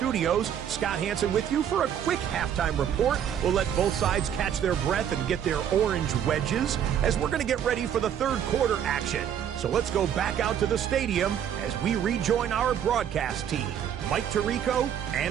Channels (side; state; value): left; quieter; 9.3 dB